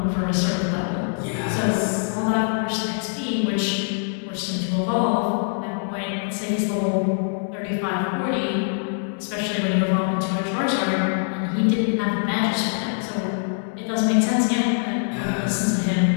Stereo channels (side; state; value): right; silent; digital silence